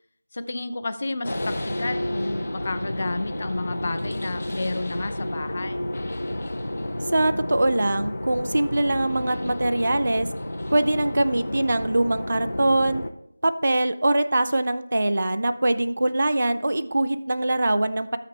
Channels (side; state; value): both; inverted; correlation -0.97